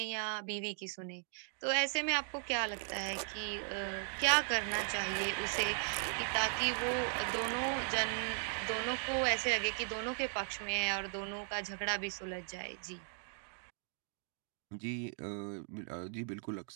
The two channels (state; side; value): silent; left; 53 dB below the other